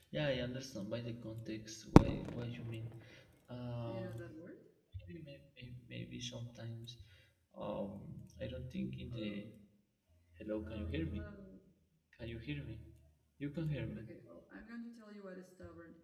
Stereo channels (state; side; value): identical; both; correlation 1.00